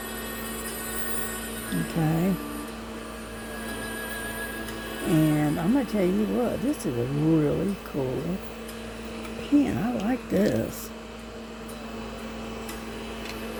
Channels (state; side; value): identical; both; correlation 1.00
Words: Okay. And I'm going to tell you what, this is a really cool pin. I like this.